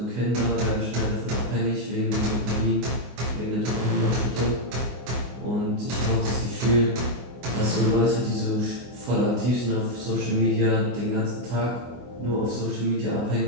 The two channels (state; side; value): late; left; 24 ms